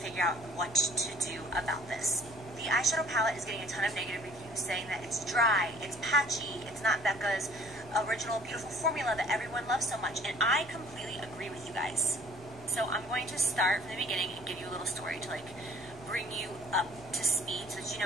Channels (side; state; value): both; normal; correlation 0.54